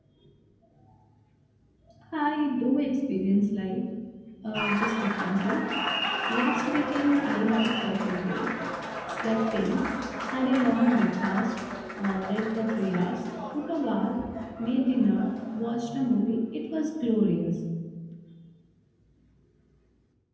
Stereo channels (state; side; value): identical; both; correlation 1.00